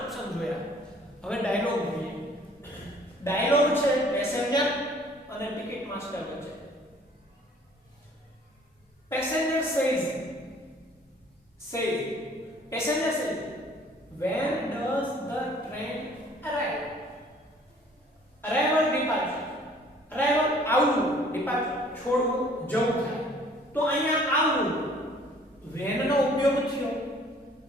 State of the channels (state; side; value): normal; both; correlation 0.55